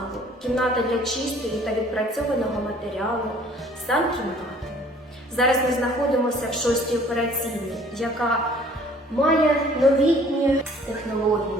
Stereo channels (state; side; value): normal; both; correlation 0.55